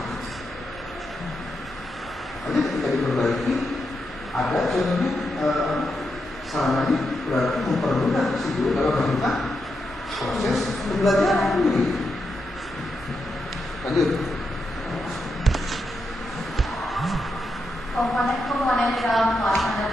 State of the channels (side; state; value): both; normal; correlation 0.85